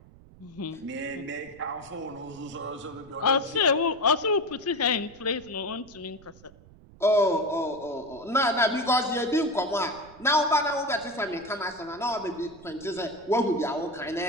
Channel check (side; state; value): right; noise; rumble, 23 dB below the sound